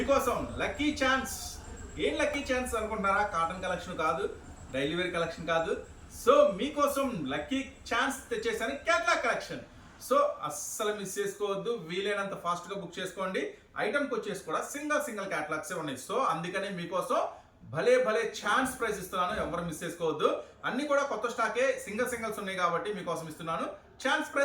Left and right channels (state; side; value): identical; both; correlation 1.00